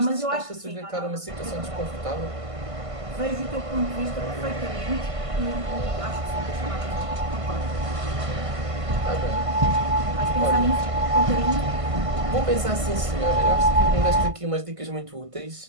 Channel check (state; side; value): late; left; 1.5 ms